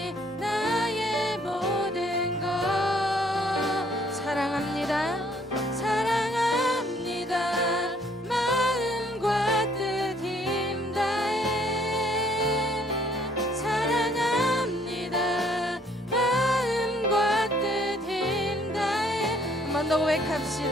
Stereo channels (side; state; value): both; normal; correlation 0.63